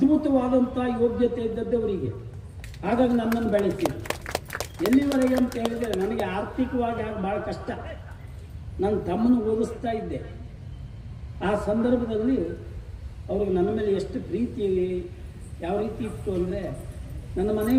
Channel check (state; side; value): identical; both; correlation 1.00